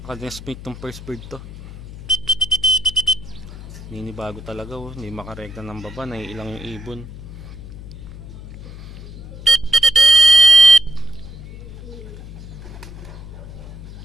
tong first bird to. Ninibago talaga, hindi makarekta ng baba, naiilang yung ibon.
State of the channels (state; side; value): noise; left; hum, 13 dB below the sound